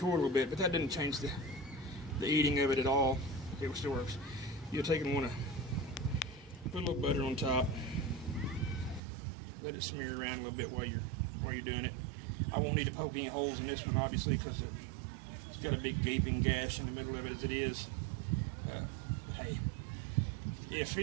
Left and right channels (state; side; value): drops out; left; at 9.0 s